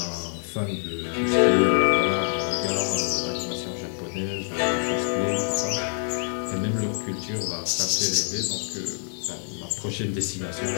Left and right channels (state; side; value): silent; right; 61 dB below the other